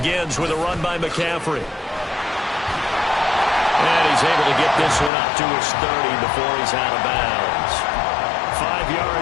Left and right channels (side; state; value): right; drops out; at 5.1 s